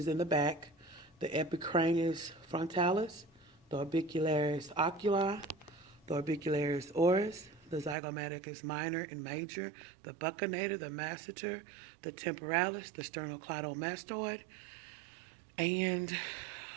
in the back. The epicranus frontalis, the orbicularis oculi, the orbicularis oris, the zygomaticus minor and major, the buccinator, the masseter, the temporalis, the sternocleidomastoid, and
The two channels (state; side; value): drops out; left; at 8.0 s